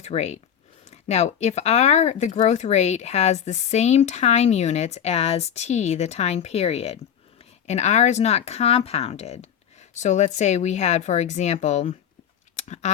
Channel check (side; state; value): right; quieter; 9.0 dB